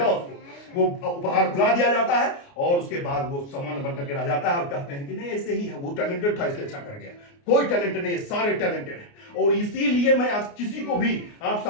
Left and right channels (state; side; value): late; right; 29 ms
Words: उसको, वो उपहार भुला दिया जाता है और उसके बाद वो सामान बन करके रह जाता है और कहते हैं कि नहीं ऐसे ही है, वो टैलेंटेड था इसलिए अच्छा कर गया। कोई टैलेंटेड नहीं है, सारे टैलेंटेड हैं। और इसीलिए मैं आज किसी को भी, आप